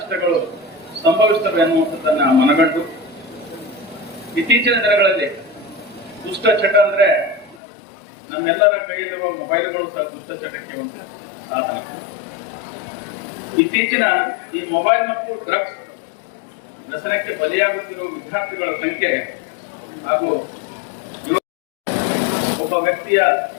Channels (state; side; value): drops out; right; at 7.6 s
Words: ಸಂಭವಿಸುತ್ತವೆ ಅನ್ನುವಂಥದ್ದನ್ನ ಮನಗಂಡು ಇತ್ತೀಚಿನ ದಿನಗಳಲ್ಲಿ ದುಷ್ಟಚಟ ಅಂದ್ರೆ ನಮ್ಮೆಲ್ಲರ ಕೈಯಲ್ಲಿರುವ ಮೊಬೈಲ್ಗಳು ಸಹ ದುಷ್ಟಚಟಕ್ಕೆ ಒಂದು ಸಾಧನ. ಇತ್ತೀಚಿನ ಈ ಮೊಬೈಲ್ ಮತ್ತು ಡ್ರಗ್ಸ್ ವ್ಯಸನಕ್ಕೆ ಬಲಿಯಾಗುತ್ತಿರುವ ವಿದ್ಯಾರ್ಥಿಗಳ ಸಂಖ್ಯೆ ಹಾಗೂ ಒಬ್ಬ ವ್ಯಕ್ತಿಯ